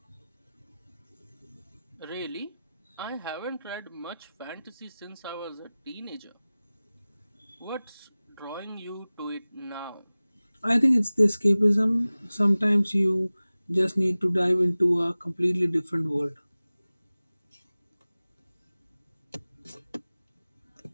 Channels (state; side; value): inverted; both; correlation -0.98